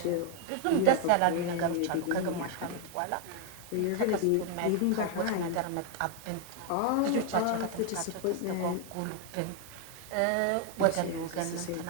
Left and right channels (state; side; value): different; both; correlation 0.00